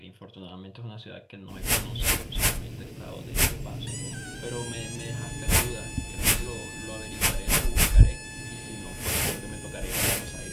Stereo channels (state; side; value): identical; both; correlation 1.00